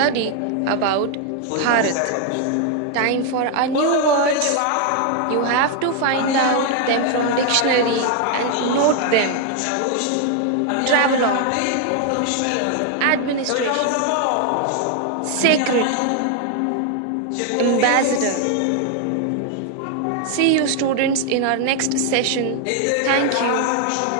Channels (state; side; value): different; both; correlation 0.00